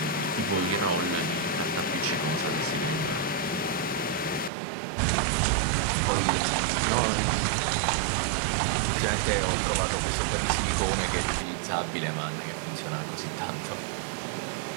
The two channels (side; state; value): left; drops out; at 4.5 s